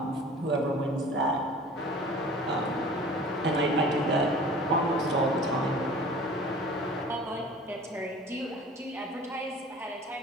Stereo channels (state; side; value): normal; both; correlation 0.44